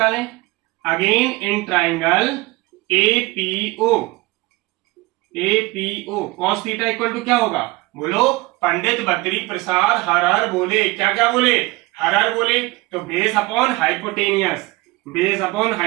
again in triangle APO cos theta equal to क्या होगा, बोलो पंडित बद्री प्रसाद हर हर बोले, क्या क्या बोले, हर हर बोले, तो base upon hypotenuse, base upon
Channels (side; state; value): left; quieter; 21.6 dB